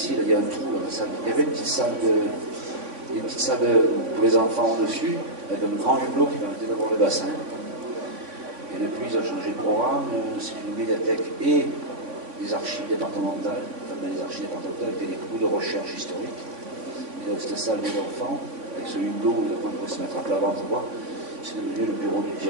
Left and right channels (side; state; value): left; late; 3.5 ms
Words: là, il y a un trou dans la salle. Il y avait une petite salle pour les enfants au-dessus, avec un grand hublot qui permettait d'avoir le bassin. Et depuis, ils ont changé de programme. C'est une médiathèque et des archives départementales. Enfin, les archives départementales étaient des cours de recherche historique. Et donc, cette salle des enfants, avec ce hublot où les enfants pouvaient se mettre à plat ventre droit, c'est devenu le bureau du